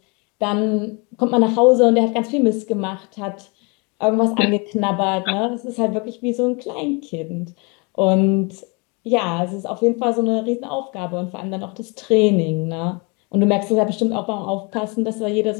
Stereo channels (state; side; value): quieter; right; 30.8 dB